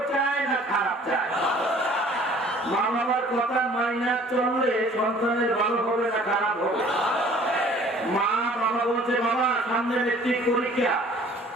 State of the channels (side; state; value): both; normal; correlation 0.53